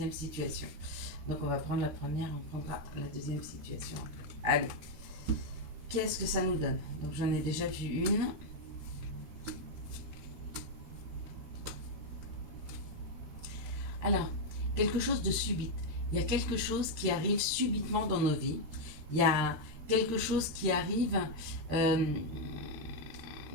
situation. Donc, on va prendre la première, on prendra la deuxième situation. Allez, qu'est-ce que ça nous donne? Donc, j'en ai déjà vu une. Alors, quelque chose de subite. Il y a quelque chose qui arrive subitement dans nos vies. Il y a quelque chose qui arrive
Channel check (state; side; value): late; left; 13 ms